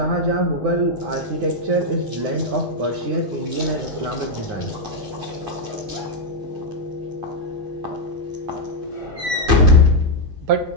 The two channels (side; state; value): left; late; 9.7 ms